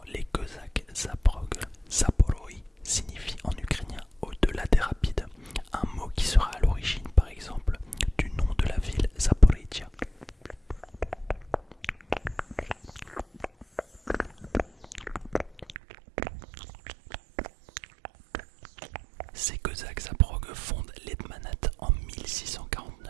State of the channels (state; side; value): drops out; left; at 15.8 s